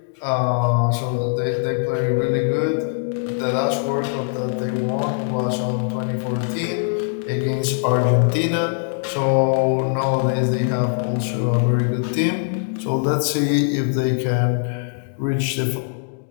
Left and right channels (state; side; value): silent; right; digital silence